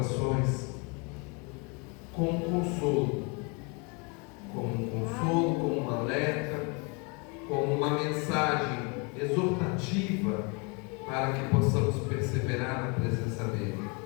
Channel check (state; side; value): quieter; right; 32.2 dB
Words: com um consolo, como um alerta, como uma mensagem exortativa para que possamos perseverar na presença dele.